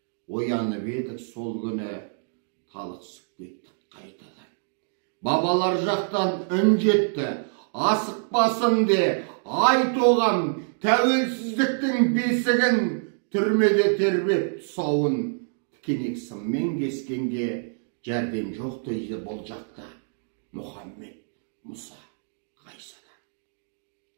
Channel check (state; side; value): silent; left; digital silence